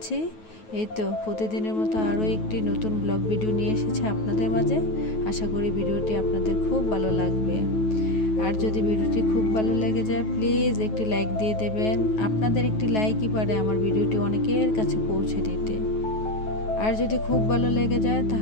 এই তো প্রতিদিনের মতো আরও একটি নতুন ব্লগ ভিডিও নিয়ে এসেছে আপনাদের মাঝে। আশা করি ভিডিওটি আপনাদের খুব ভালো লাগবে। আর যদি ভিডিওটি খুব ভালো লেগে যায়, প্লিজ একটি লাইক দিয়ে দেবেন। আপনাদের একটি লাইকই পারে আমার ভিডিওটি অনেকের কাছে পৌঁছে দিতে। আর যদি খুব ভালো লেগে যায়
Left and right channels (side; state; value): right; late; 9.3 ms